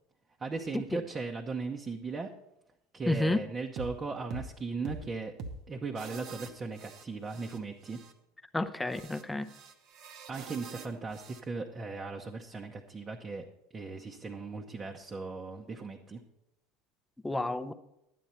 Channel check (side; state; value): both; normal; correlation 0.82